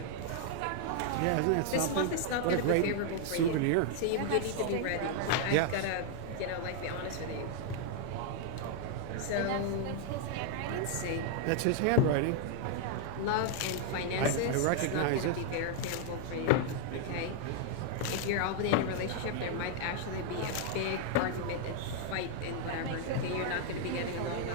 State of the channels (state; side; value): different; both; correlation 0.00